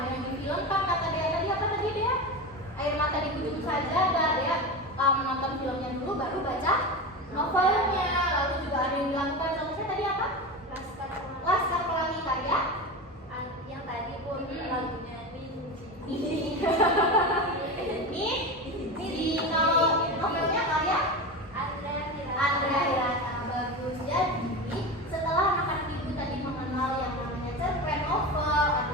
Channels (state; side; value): normal; both; correlation 0.24